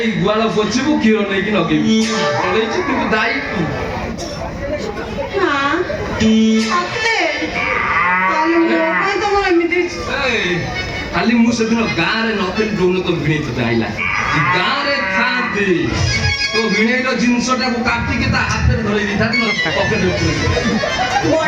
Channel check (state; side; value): identical; both; correlation 1.00